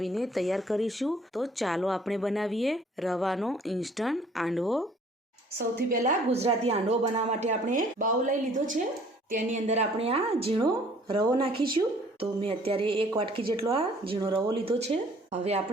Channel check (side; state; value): both; normal; correlation 0.56